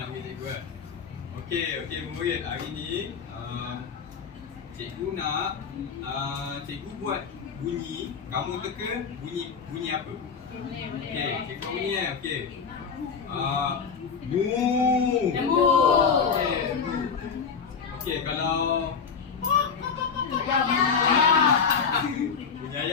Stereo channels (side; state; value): right; quieter; 6.0 dB